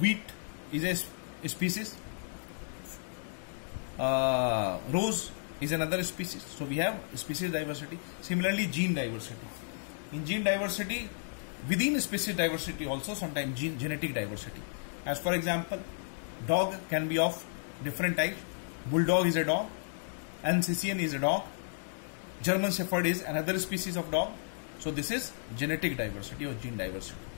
is a species, rose is another species. So we have species diversity. Similarly, gene diversity. In gene diversity, within species diversity also sometimes genetic diversity. As for example, dog can be of different types. Bulldog is a dog, Alsatian is a dog, German Shepherd is another species of dog. So this is genetic diversity or gene diversity.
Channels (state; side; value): silent; right; digital silence